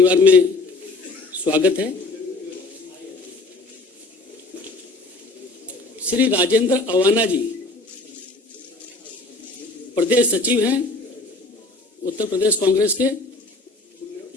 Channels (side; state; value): right; quieter; 3.1 dB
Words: में स्वागत है। श्री राजेंद्र अवाना जी प्रदेश सचिव हैं उत्तर प्रदेश कांग्रेस के,